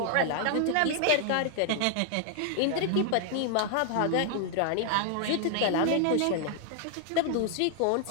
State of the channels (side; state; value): both; different; correlation 0.00